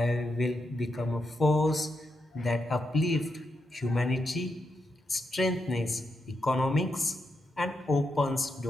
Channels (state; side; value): normal; both; correlation 0.84